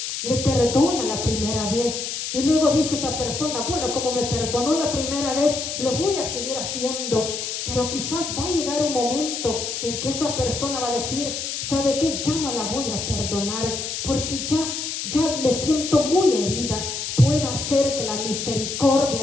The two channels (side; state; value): left; noise; hiss, 4 dB below the sound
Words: le perdona la primera vez y luego dice esa persona, bueno, como me perdonó la primera vez, lo voy a seguir haciendo. Pero quizás va a llegar un momento en que esa persona va a decir, ¿sabe qué? Ya no la voy a perdonar porque ya me siento muy herida. Puede ser que la misericordia